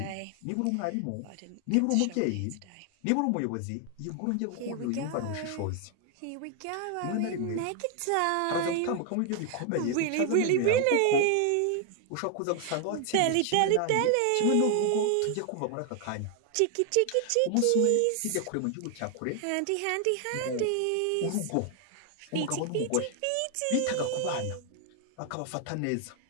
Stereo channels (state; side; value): different; both; correlation 0.00